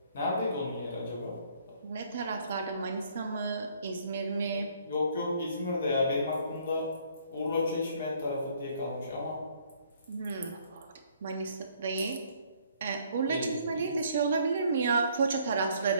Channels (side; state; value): both; inverted; correlation -0.63